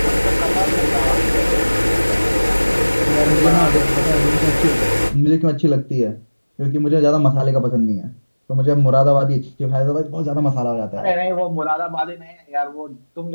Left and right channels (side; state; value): both; inverted; correlation -1.00